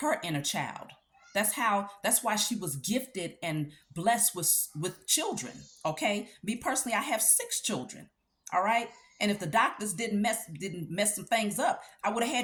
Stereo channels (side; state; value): both; identical; correlation 1.00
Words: inner child. That's why she was gifted and blessed with children. Okay. Me personally, I have 6 children. All right. And if the doctors didn't mess some things up, I would have